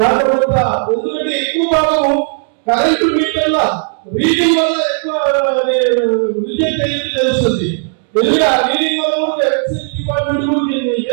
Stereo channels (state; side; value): silent; left; digital silence